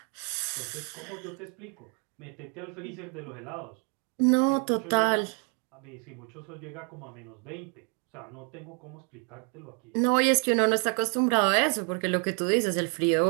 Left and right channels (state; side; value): quieter; left; 39.1 dB